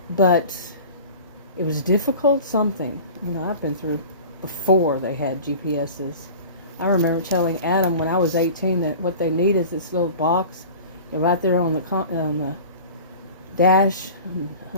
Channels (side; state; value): both; inverted; correlation -0.39